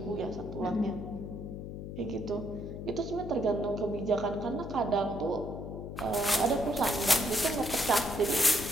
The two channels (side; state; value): left; noise; hum, 8 dB below the sound